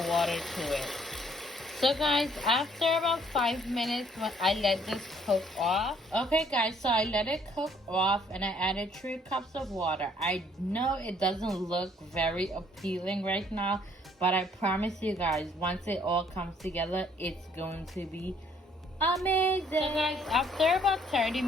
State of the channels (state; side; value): normal; both; correlation 0.63